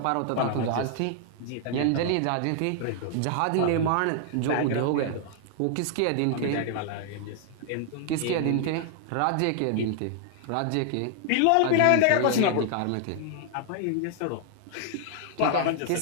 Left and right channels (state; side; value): different; both; correlation 0.00